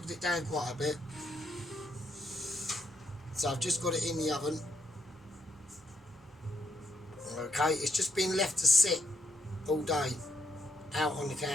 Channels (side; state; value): both; normal; correlation 0.75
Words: it down quite a bit. So I've just got it in the oven. Okay, it's just been left to sit all day out on the